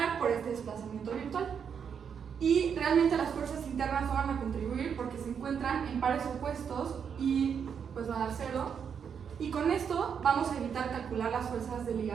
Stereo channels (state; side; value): quieter; left; 7.2 dB